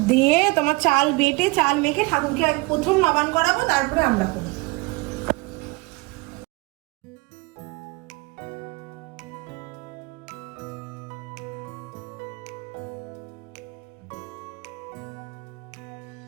দিয়ে তোমার চাল বেটে চাল মেখে ঠাকুরকে প্রথম নবান করাবো, তারপরে আমরা করবো।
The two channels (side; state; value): left; quieter; 25.9 dB